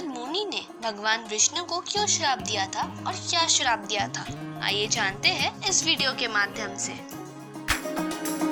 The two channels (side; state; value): both; identical; correlation 1.00